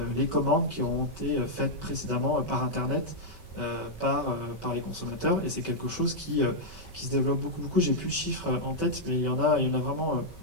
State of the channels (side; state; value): right; late; 5.2 ms